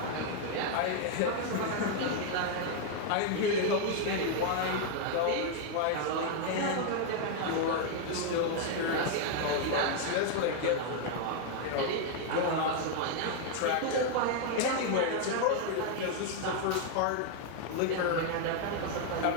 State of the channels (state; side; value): different; both; correlation 0.00